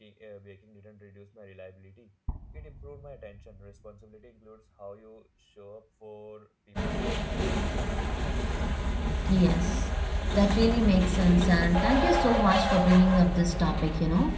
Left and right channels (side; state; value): both; identical; correlation 1.00